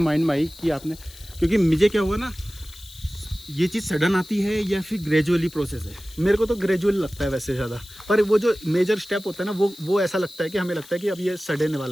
में आई कि आपने, क्योंकि मुझे क्या हुआ ना, ये चीज़ सडन आती है या फिर ग्रेजुअली प्रोसेस है? मेरे को तो ग्रेजुअल लगता है वैसे ज़्यादा, पर वो जो मेजर स्टेप होता है ना, वो ऐसा लगता है कि हमें लगता है कि अब ये सडन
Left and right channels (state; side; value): noise; left; hiss, 20 dB below the sound